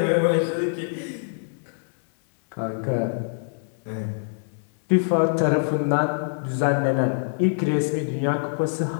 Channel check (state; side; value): silent; right; 62 dB below the other